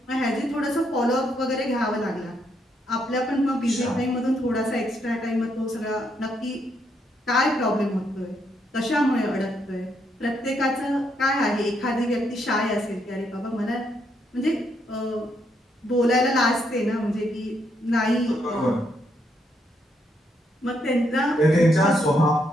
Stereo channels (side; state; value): both; normal; correlation 0.76